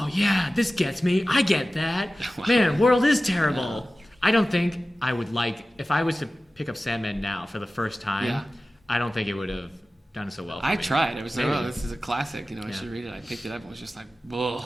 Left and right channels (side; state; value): both; normal; correlation 0.96